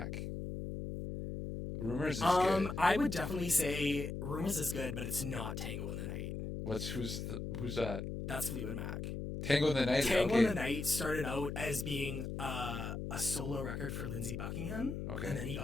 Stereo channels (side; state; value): left; noise; hum, 5 dB below the sound